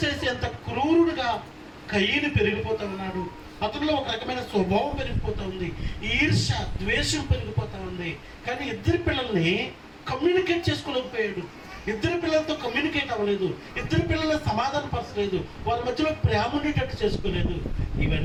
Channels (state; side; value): identical; both; correlation 1.00